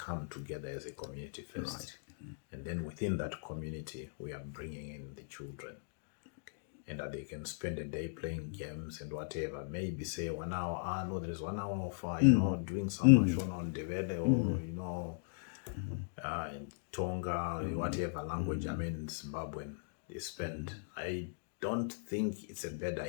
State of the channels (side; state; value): right; silent; digital silence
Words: together as a community first. Right. And then within that community, we are bringing in the children. And that they can spend a day playing games and whatever. Maybe say 1 hour, no, there is 1 hour of, you know, doing some Shona on Devele or, you know, in Tonga, whatever language, I mean, Zimbabwean, they spend. I don't think it's a bad